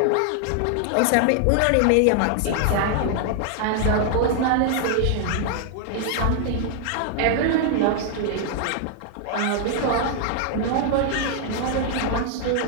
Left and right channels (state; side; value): different; both; correlation 0.00